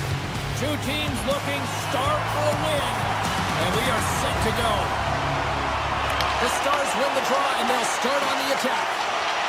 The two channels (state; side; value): identical; both; correlation 1.00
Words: Two teams looking stark for a win. And we are set to go. The Stars win the draw, and they'll start on the attack.